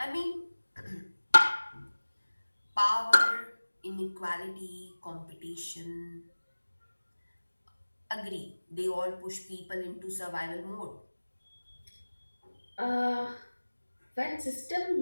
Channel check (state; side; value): inverted; both; correlation -1.00